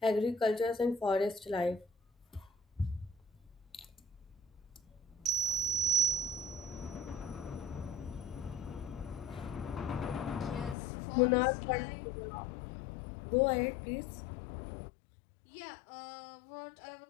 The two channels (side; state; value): right; drops out; at 10.8 s